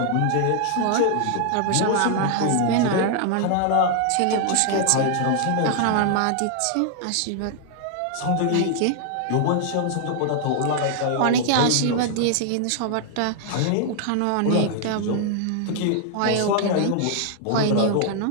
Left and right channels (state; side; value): different; both; correlation 0.00